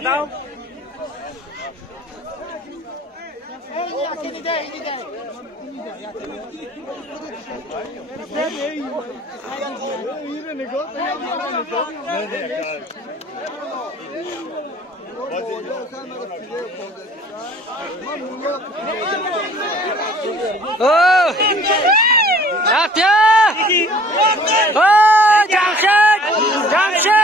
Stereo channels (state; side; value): normal; both; correlation 0.52